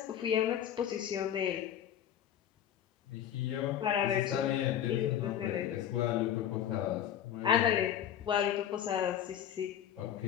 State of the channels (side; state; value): right; quieter; 10.1 dB